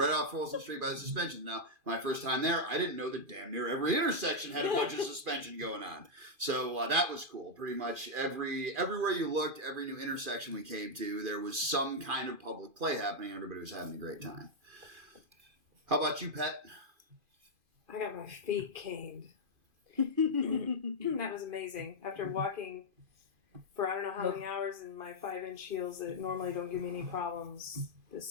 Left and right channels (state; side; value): late; left; 2.5 ms